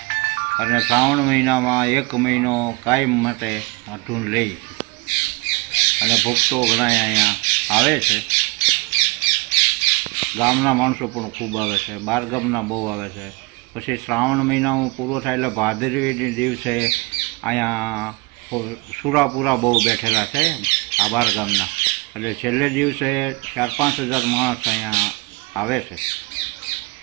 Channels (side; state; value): left; quieter; 26.4 dB